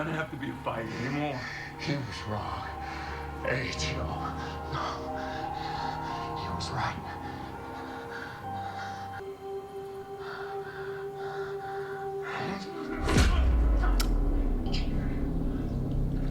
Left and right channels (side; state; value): both; identical; correlation 1.00